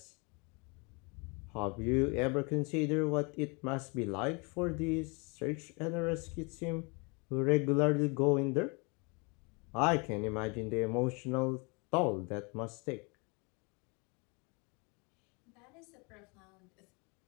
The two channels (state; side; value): quieter; right; 31.1 dB